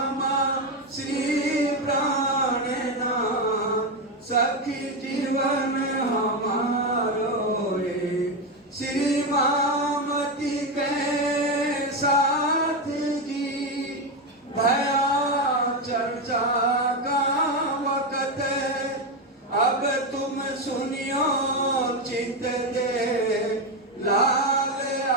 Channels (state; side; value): normal; both; correlation 0.11